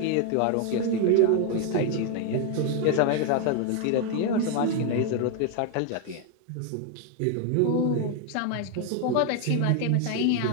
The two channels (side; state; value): both; different; correlation 0.01